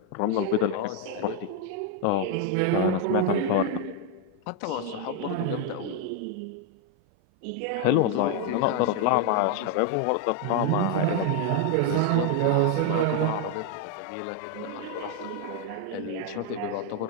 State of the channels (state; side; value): different; both; correlation 0.01